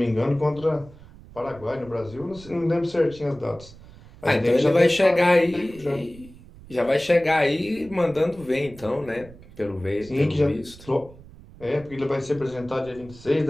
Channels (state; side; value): noise; right; rumble, 20 dB below the sound